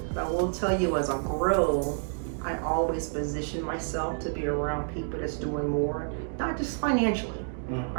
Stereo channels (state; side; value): silent; left; digital silence